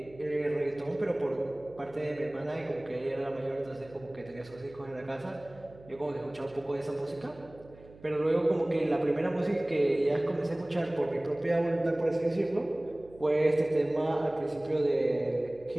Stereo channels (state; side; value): noise; right; hum, 22 dB below the sound